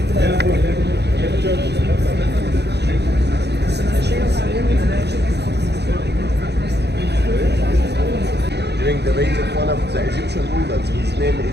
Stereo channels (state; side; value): late; left; 0.49 ms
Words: During the reign of one of the Egyptian rulers, his name